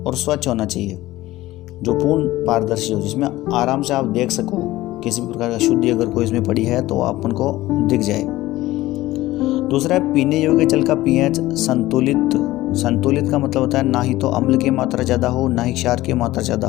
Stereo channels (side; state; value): right; quieter; 17.0 dB